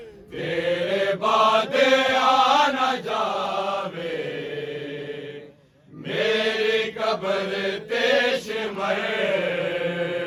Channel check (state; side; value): identical; both; correlation 1.00